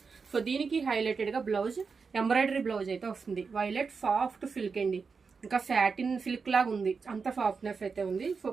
సో దీనికి హైలైటెడ్ గా బ్లౌజ్, ఎంబ్రాయిడరీ బ్లౌజ్ అయితే వస్తుంది. వైలెట్ సాఫ్ట్ సిల్క్ అండి, ఇంకా సాటిన్ సిల్క్ లాగా ఉంది, అంత సాఫ్ట్నెస్ అయితే ఉంది. సో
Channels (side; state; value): left; quieter; 5.1 dB